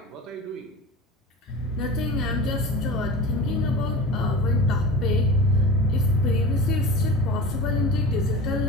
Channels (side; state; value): both; normal; correlation 0.32